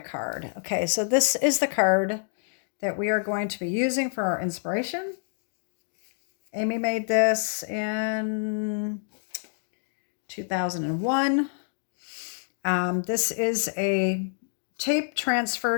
Okay, so this is the card that we are going to be using for our inspiration. Amy made this in 2001. This is a tape transfer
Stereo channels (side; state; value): right; silent; digital silence